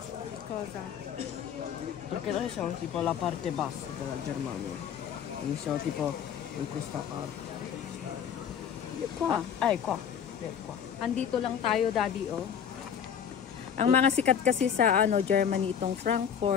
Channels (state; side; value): quieter; right; 8.2 dB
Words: Cosa? Perché noi siamo tipo alla parte bassa della Germania. Quindi siamo tipo in questa parte. Qua. Qua. Qua. Andito lang tayo, Daddy, oh. Ang mga sikat kasi sa Germany itong